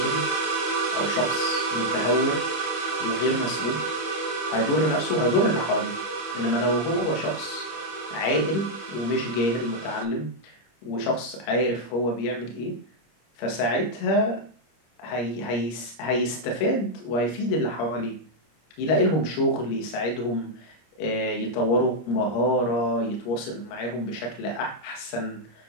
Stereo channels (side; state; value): right; late; 25 ms